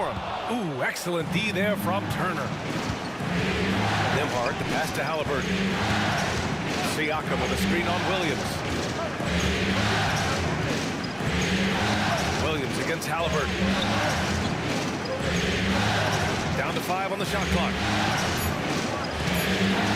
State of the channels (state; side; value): identical; both; correlation 1.00